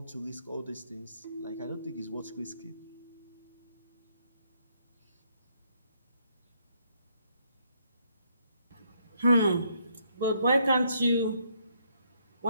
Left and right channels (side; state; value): both; inverted; correlation -0.72